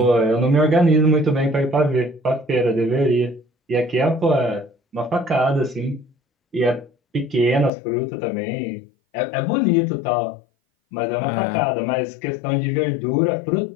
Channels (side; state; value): right; drops out; at 7.7 s